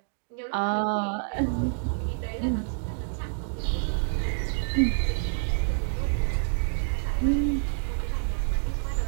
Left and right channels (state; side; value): silent; left; digital silence